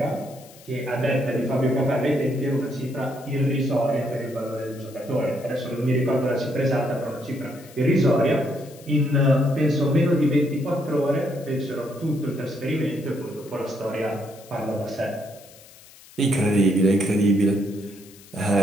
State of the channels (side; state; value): left; noise; hiss, 22 dB below the sound